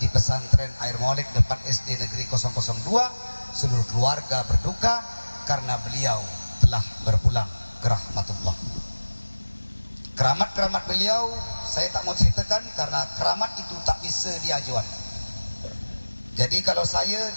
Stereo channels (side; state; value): both; inverted; correlation -1.00